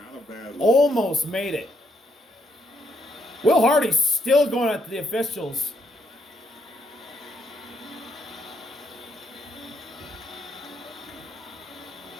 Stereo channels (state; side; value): normal; both; correlation 0.73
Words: a bad look. almost made it. Will Hardy's still going after the officials.